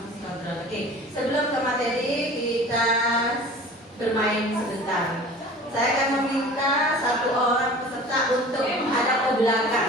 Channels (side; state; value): both; normal; correlation 0.42